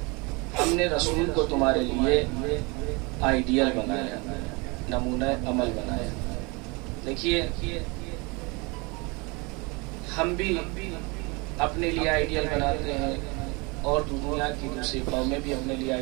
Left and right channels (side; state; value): left; quieter; 28.0 dB